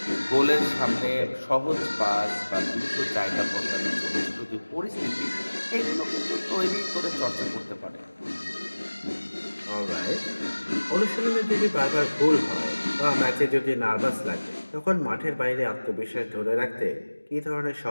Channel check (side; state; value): both; inverted; correlation -1.00